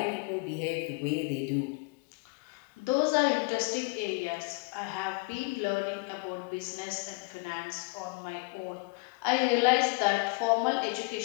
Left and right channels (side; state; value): right; quieter; 28.2 dB